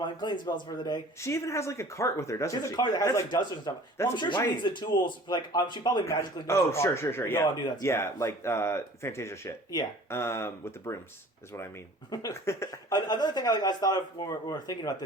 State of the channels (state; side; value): normal; both; correlation 0.47